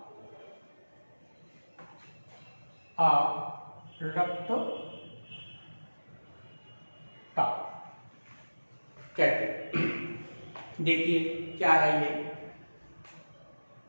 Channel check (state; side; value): inverted; both; correlation -1.00